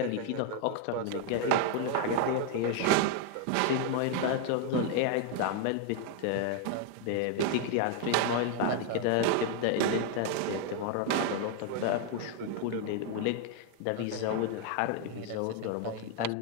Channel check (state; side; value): different; both; correlation 0.01